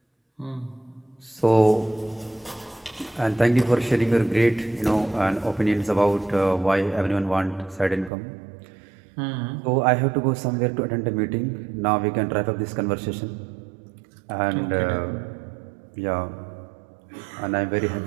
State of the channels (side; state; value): left; drops out; at 8.1 s